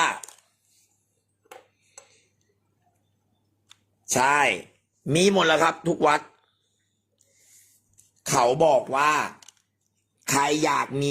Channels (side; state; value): both; identical; correlation 1.00